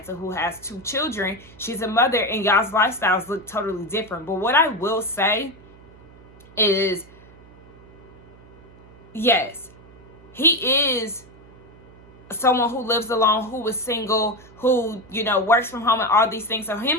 who has 2 children. She's a mother and y'all's lifestyles look totally different. But what I will say is, yes, he is someone who lives alone, who is single, who, you know, works from home and all these things. So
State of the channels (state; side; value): noise; right; hum, 23 dB below the sound